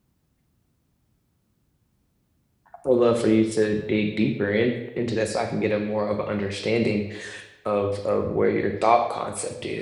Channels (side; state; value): both; identical; correlation 1.00